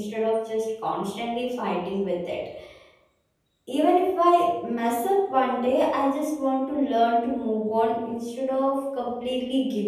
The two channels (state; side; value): identical; both; correlation 1.00